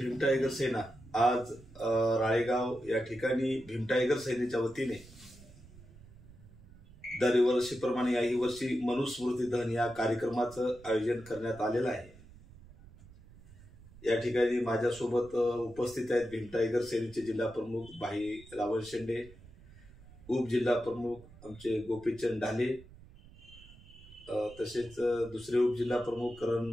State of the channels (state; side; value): noise; right; rumble, 21 dB below the sound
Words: टायगर सेना आज राळेगाव या ठिकाणी भीम टायगर सेनेच्या वतीने दरवर्षीप्रमाणे याही वर्षी मनुस्मृती दहन या कार्यक्रमाचं आयोजन करण्यात आलेलं आहे। या ठिकाणी माझ्यासोबत उपस्थित आहेत भीम टायगर सेनेचे जिल्हा प्रमुख भाई रावण शेंडे, उपजिल्हा प्रमुख आमचे गोपीचंद ढाले, तसेच दुसरे उपजिल्हा प्रमुख करण